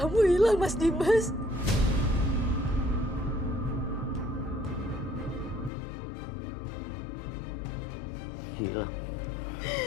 hilang, Mas Dimas. Hilang?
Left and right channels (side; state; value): right; drops out; at 5.7 s